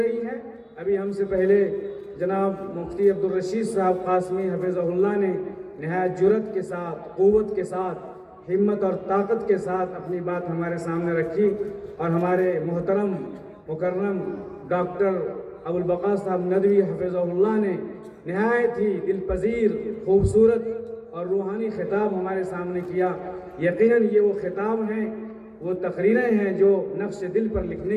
ہے۔ ابھی ہم سے پہلے جناب مفتی عبدالرشید صاحب قاسمی حفظہ اللہ نے نہایت جرأت کے ساتھ، قوت کے ساتھ، ہمت اور طاقت کے ساتھ اپنی بات ہمارے سامنے رکھی، اور ہمارے محترم مکرم ڈاکٹر ابوالبقا صاحب ندوی حفظہ اللہ نے نہایت ہی دل پذیر، خوبصورت اور روحانی خطاب ہمارے سامنے کیا۔ یقیناً یہ وہ خطاب ہیں، وہ تقریریں ہیں جو نقش دل پر لکھنے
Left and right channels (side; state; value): both; identical; correlation 1.00